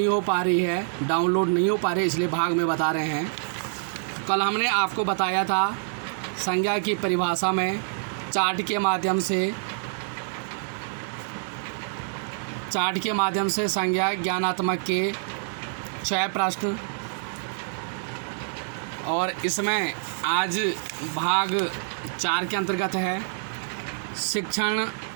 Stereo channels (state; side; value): silent; left; 61 dB below the other